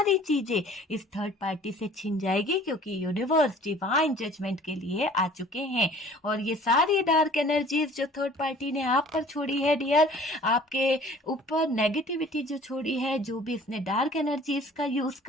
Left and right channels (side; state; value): both; normal; correlation 0.50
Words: चीजें इस थर्ड पार्टी से छीन जाएगी, क्योंकि यूनिवर्स डिवाइन जजमेंट के लिए आ चुके हैं। और ये सारी डार्क एनर्जीज जो थर्ड पार्टी ने आप पर छोड़ी है डियर, आपके ऊपर नेगेटिविटी जो छोड़ी है, जो भी इसने डार्क एनर्जीज का यूज